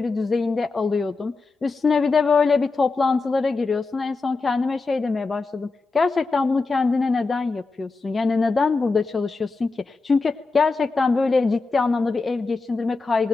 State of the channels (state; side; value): quieter; right; 3.9 dB